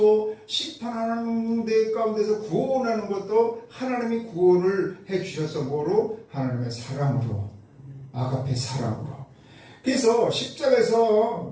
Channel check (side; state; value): both; identical; correlation 1.00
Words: 심판하는 데 가운데서 구원하는 것도 하나님이 구원을 해 주셔서 뭐로? 하나님의 사랑으로, 아가페 사랑으로. 그래서